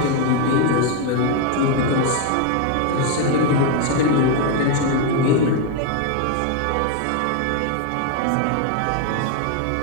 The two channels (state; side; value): different; both; correlation 0.01